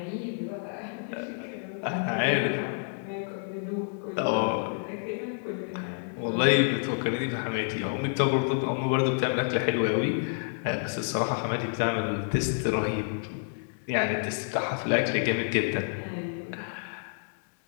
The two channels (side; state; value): right; silent; 59 dB below the other